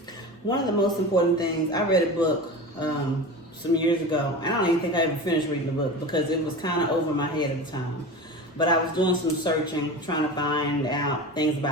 One of the most important things, I read a book some years ago, and I don't even think I ever finished reading the book because it was kind of over my head at the time. But I was doing some searching, trying to find out things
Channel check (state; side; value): normal; both; correlation 0.30